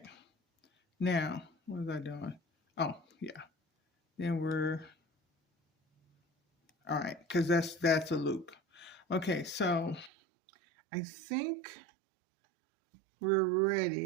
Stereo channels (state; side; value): drops out; left; at 10.1 s